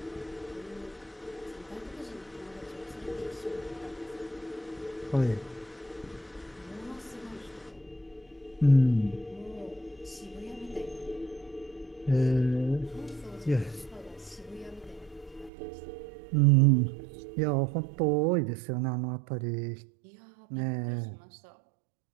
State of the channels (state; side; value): drops out; left; at 15.5 s